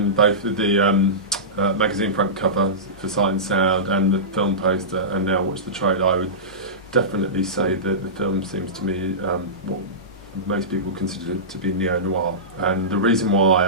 both the magazine front cover for Sight and Sound and the film poster, and now watch the trailer, I would definitely say that the film seems to me what most people consider to be neo-noir. And the reason why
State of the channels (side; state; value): both; normal; correlation -0.19